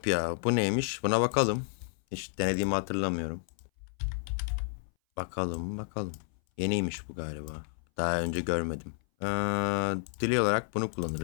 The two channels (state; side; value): silent; right; 57 dB below the other